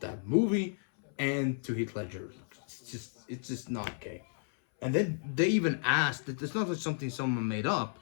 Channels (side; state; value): right; silent; 56 dB below the other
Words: movie and to Heath Ledger. It's just not okay. And then they even asked that it's not just something someone made up.